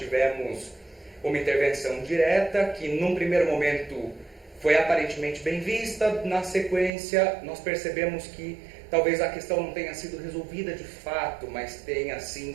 uma intervenção direta que num primeiro momento foi aparentemente bem vista, na sequência nós percebemos que talvez a questão não tenha sido resolvida de fato, mas tenha sim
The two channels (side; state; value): left; drops out; at 6.9 s